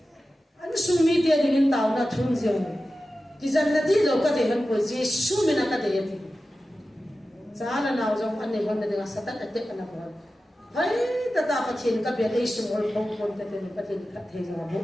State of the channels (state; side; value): normal; both; correlation 0.94